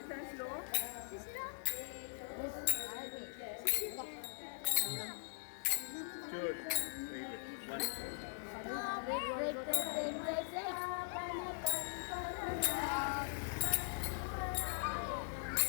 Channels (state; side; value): silent; right; digital silence